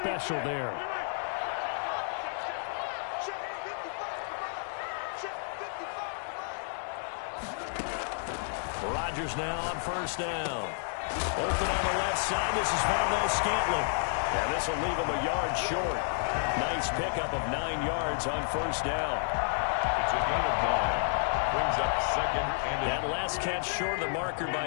there. Rodgers now on 1st down. Open on the left side. This is Valdes-Scantling. And this will leave him a yard short. Nice pickup of 9 yards on 1st down. It's a gain of 9. Brings up 2nd and that last catch short of the marker by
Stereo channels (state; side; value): silent; right; digital silence